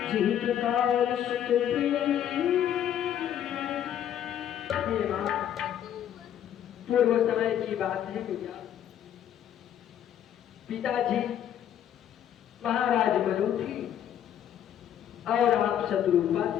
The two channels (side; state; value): right; quieter; 10.3 dB